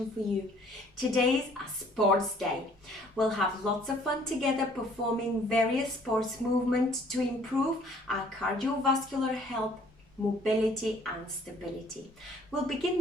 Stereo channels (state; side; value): normal; both; correlation 0.58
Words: for you. Today's a sports day. We'll have lots of fun together performing various sports movements to improve our cardiovascular health, mobility and stability. We'll begin